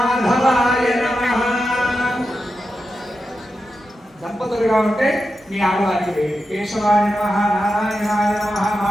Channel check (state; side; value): normal; both; correlation 0.89